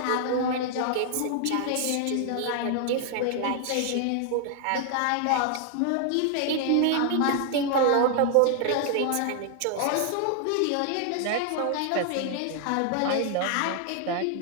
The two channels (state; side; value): different; both; correlation 0.00